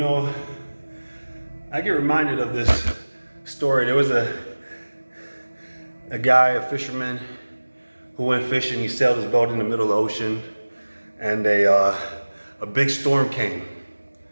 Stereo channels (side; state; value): both; inverted; correlation -1.00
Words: I get reminded of this story. There was a guy, a fisherman, who went fishing. He sailed his boat in the middle of the ocean, and a big storm came,